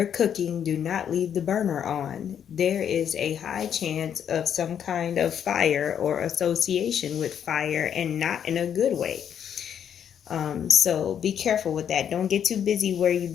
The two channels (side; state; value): right; quieter; 8.8 dB